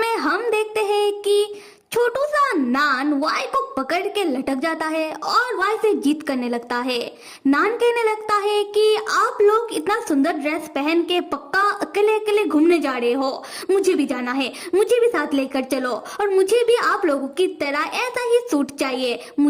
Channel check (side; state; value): both; identical; correlation 1.00